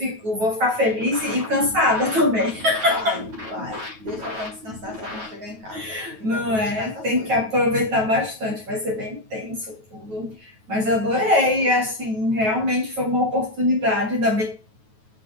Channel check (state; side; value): late; left; 9.2 ms